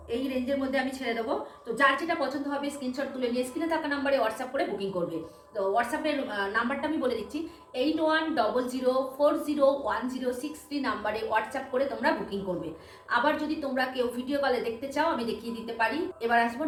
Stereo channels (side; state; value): both; identical; correlation 1.00